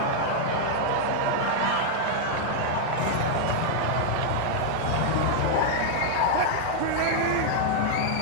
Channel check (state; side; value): different; both; correlation -0.01